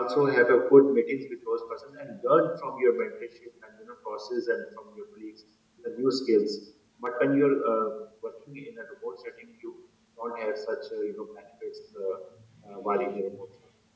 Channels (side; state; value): both; identical; correlation 1.00